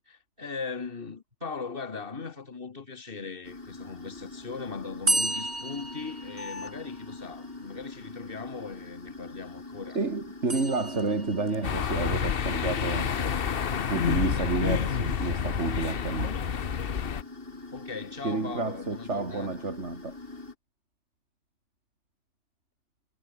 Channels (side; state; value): left; late; 2.7 ms